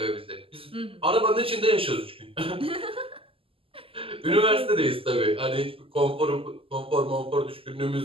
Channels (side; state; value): left; late; 0.26 ms